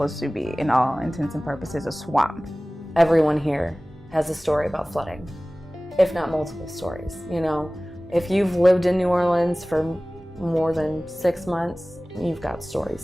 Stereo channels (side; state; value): both; normal; correlation 0.98